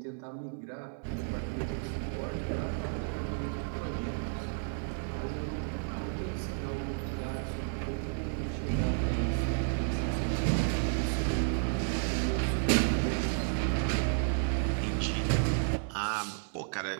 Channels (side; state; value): left; silent; 56 dB below the other